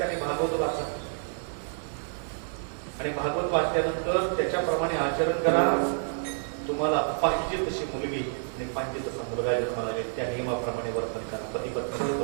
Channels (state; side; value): silent; left; 59 dB below the other